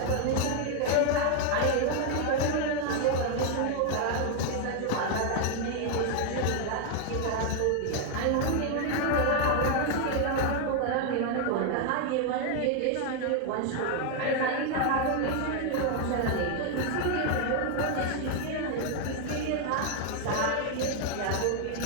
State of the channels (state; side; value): different; both; correlation 0.00